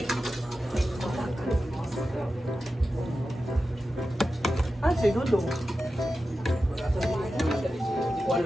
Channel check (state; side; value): normal; both; correlation 0.92